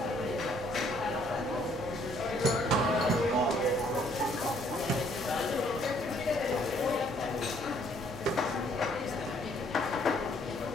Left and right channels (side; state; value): both; normal; correlation 0.64